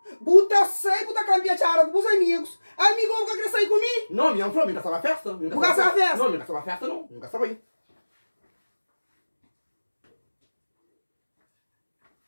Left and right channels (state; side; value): inverted; both; correlation -1.00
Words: buta sai, buta cambiar chara com os amigos. Amigo, nunca quer sair comigo? Não, minha falou, nunca sabe festa. Nunca sabe festa? Não, nunca sabe festa não. Nunca sabe aí.